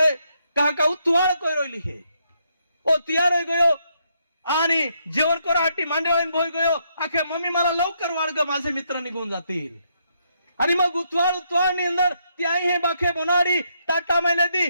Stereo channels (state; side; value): inverted; both; correlation -0.76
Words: कहा का तुवाळ कोय रोयली हे ओ तयार होई गयो आणि जेवण कराहाटी मांडवाईन भोय गयो. आखे मम्मी मला लवकर वाढ ग, माझे मित्र निघून जातील. आणि मग उतवाळ ની અંદર त्या आई हे बाखे बनाडी ताटा में लेदी